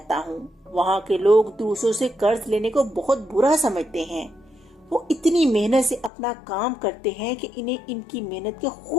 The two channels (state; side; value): drops out; right; at 6.1 s